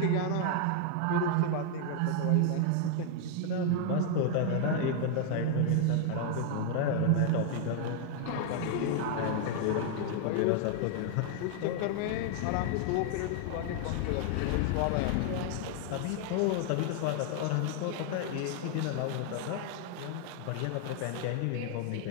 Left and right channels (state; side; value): different; both; correlation 0.00